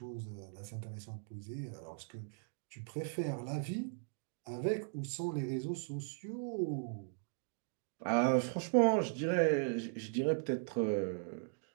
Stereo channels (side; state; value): left; silent; digital silence